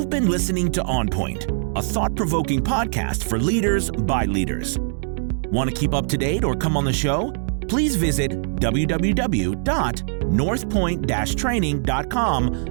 been listening to OnPoint, a thought-provoking podcast for leaders by leaders. Want to keep up to date or come on the show? Please visit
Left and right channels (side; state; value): left; silent; digital silence